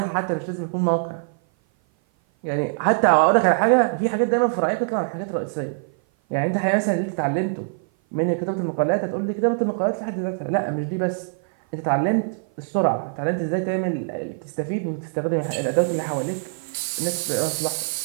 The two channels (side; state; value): left; silent; 56 dB below the other